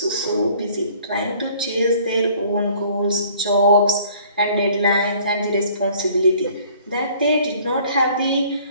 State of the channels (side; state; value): both; inverted; correlation -0.55